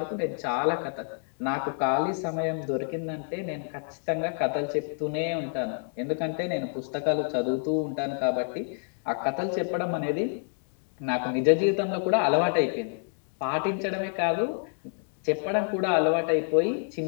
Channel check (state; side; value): silent; right; 59 dB below the other